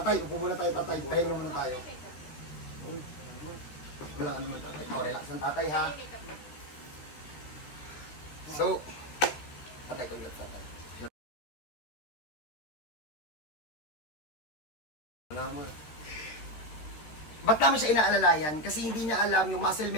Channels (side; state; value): right; late; 14 ms